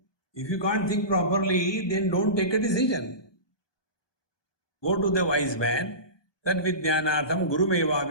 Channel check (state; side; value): late; right; 1.2 ms